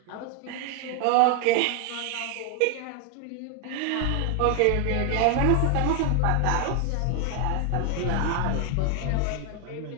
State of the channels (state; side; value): different; both; correlation 0.01